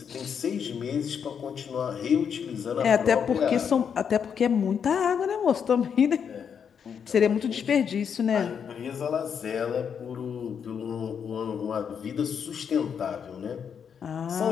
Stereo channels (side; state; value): right; quieter; 7.3 dB